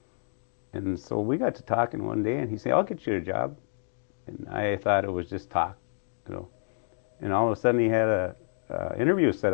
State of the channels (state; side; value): silent; right; digital silence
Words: And so we got to talking one day, and he said, "I'll get you a job." And I thought it was just talk, you know. And all of a sudden, he had a interview set